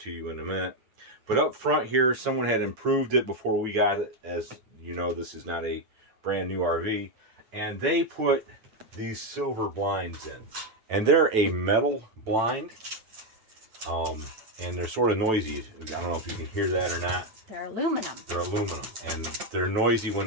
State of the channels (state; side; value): late; left; 9.0 ms